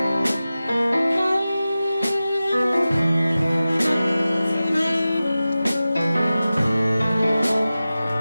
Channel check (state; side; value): inverted; both; correlation -0.95